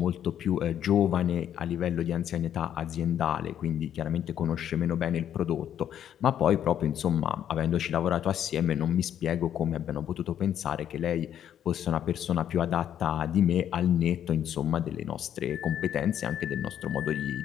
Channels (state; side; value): quieter; right; 10.0 dB